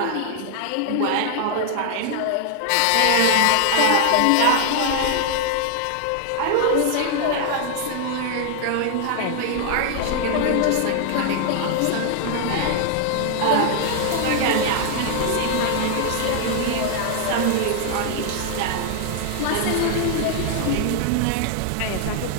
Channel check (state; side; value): different; both; correlation 0.00